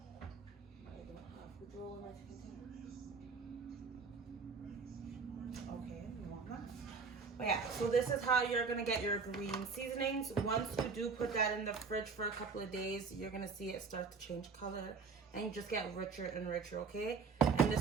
Okay, you want that? But yeah, so this is how you're gonna get your green seasonings. Once you do put that in the fridge for a couple of days, you're gonna see it start to change color and you just get richer and richer, okay? And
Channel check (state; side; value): quieter; left; 5.0 dB